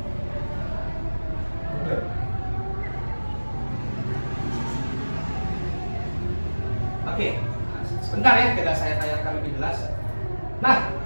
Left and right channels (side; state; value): both; inverted; correlation -1.00